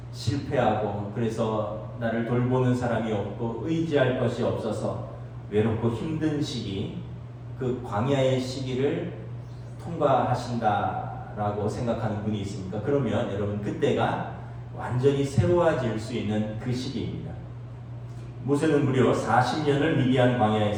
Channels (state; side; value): identical; both; correlation 1.00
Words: 실패하고 그래서 나를 돌보는 사람이 없고 의지할 것이 없어서 외롭고 힘든 시기, 그 광야의 시기를 통과하신다라고 생각하는 분이 있습니까? 그러면 여러분 그때가 완전히 새로워질 수 있는 그 시기입니다. 모세는 무려 40년을 미디안